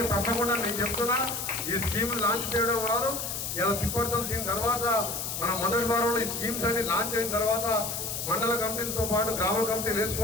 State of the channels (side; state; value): left; noise; hiss, 4 dB below the sound